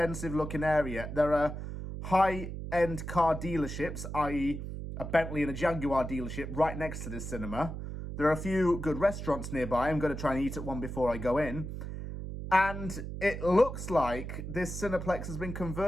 looking area. There are high-end car dealerships, i.e. a Bentley and a Jaguar dealership right next to this cinema. There are a few good restaurants nearby. I'm going to try and eat at one before I go in. And it looks like this Cineplex has been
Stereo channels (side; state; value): right; noise; hum, 7 dB below the sound